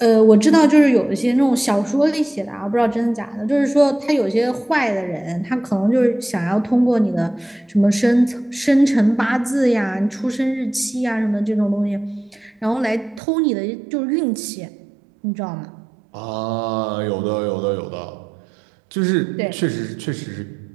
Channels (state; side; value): drops out; left; at 13.2 s